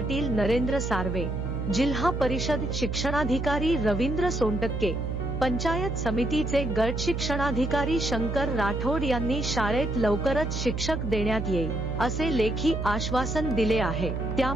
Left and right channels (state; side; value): noise; right; hum, 3 dB below the sound